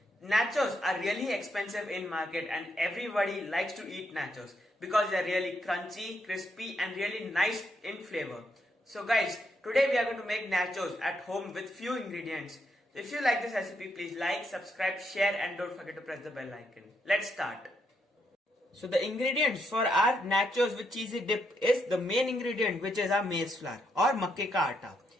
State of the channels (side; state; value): both; normal; correlation 0.78